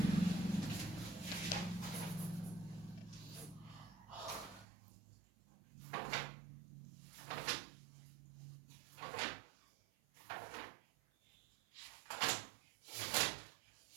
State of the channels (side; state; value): left; drops out; at 4.7 s